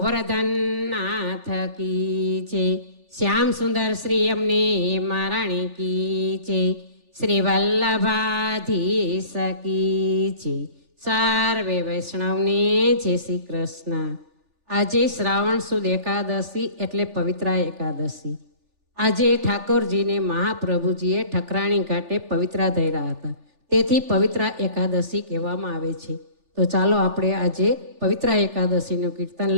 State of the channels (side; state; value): left; late; 3.4 ms